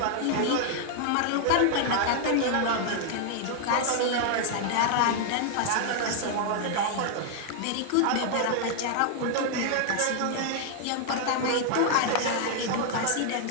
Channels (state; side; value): different; both; correlation 0.00